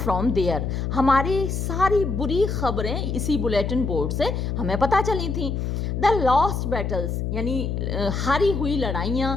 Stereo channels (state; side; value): noise; left; hum, 2 dB below the sound